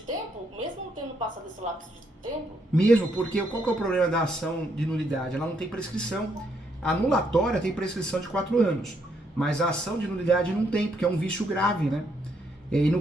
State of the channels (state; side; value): normal; both; correlation 0.74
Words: Mesmo tendo passado esse lapso de tempo? Mesmo, porque qual que é o problema da ação de nulidade? Ela não tem prescrição. A anulatória tem prescrição de 4 anos. Mas a ação de nulidade não tem, porque é um vício grave, né? E no